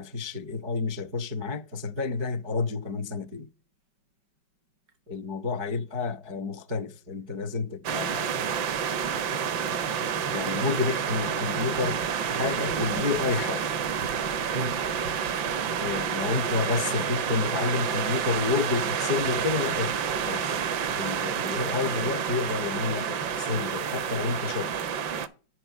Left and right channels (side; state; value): left; late; 5.2 ms